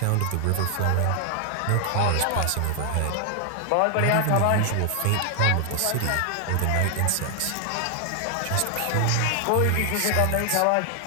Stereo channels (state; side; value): different; both; correlation 0.00